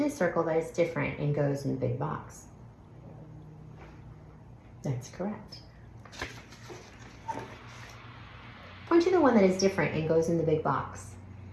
the circle that is different and goes in the big box. That's correct. Point to the one that is different and goes in the big box.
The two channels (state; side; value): identical; both; correlation 1.00